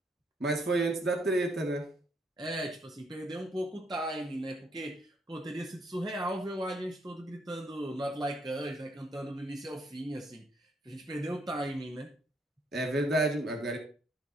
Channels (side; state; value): both; normal; correlation 0.71